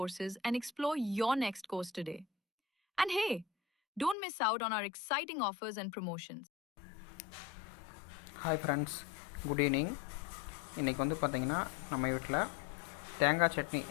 and explore your next course today. And hey, don't miss out on our exciting offers and promotions. Hi friends, good evening. இன்றைக்கி வந்து பார்த்திங்கன்னா நம்ம வீட்டில் தேங்காய் சட்னி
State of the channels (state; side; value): drops out; right; at 4.2 s